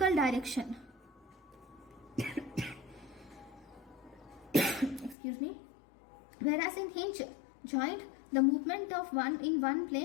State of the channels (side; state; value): right; drops out; at 5.2 s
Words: direction. Excuse me. Whereas in hinge joint, the movement of in one